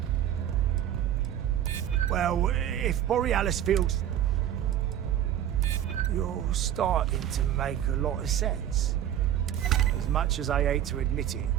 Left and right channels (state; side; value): quieter; left; 11.0 dB